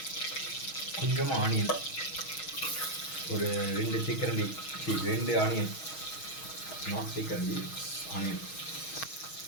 கொஞ்சமாக ஆனியன், ஒரு 2 தேக்கரண்டி, 2 ஆனியன், நாட் தேக்கரண்டி, ஆனியன்.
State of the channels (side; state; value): right; late; 6.3 ms